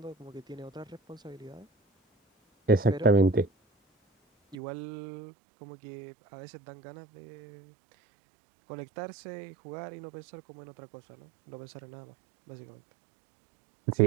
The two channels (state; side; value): drops out; left; at 4.5 s